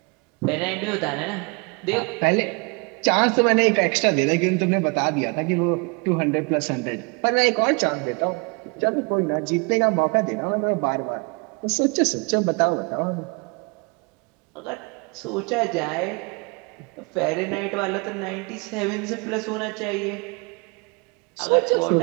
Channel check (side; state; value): left; quieter; 30.8 dB